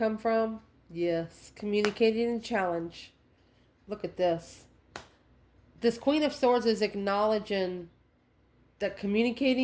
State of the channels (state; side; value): identical; both; correlation 1.00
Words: from. Yes, communicating and challenge. Look at this. This Queen of Swords is acknowledging that